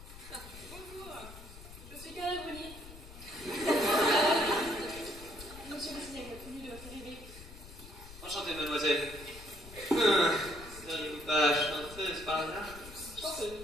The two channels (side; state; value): left; noise; rumble, 16 dB below the sound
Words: Bonjour, je suis Carla Bruni. Monsieur le cinéma, connu de votre arrivée. Enchanté, mademoiselle. Seriez-vous pas chanteuse par hasard?